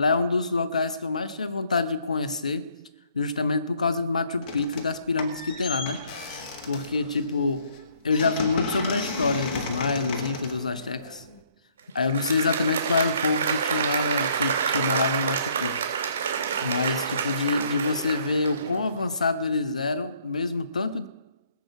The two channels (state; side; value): inverted; both; correlation -0.65